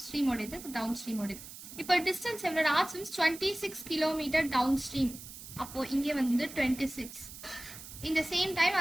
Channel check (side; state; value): right; noise; hiss, 14 dB below the sound